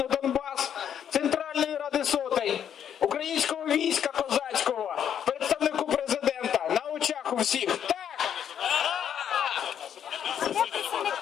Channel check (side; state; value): right; quieter; 9.1 dB